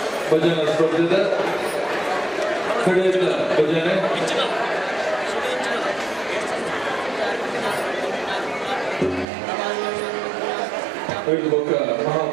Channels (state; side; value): drops out; left; at 9.2 s